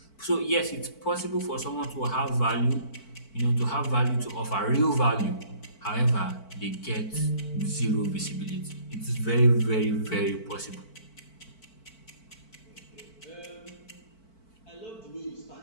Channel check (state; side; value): late; right; 4.5 ms